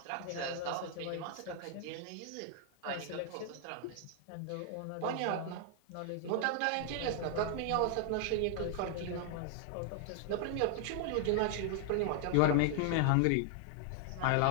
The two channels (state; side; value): different; both; correlation 0.00